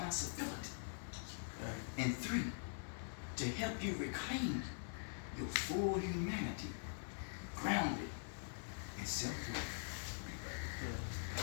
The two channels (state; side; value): silent; right; digital silence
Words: And 3, to help you reclaim your full humanity, grounded in self-worth.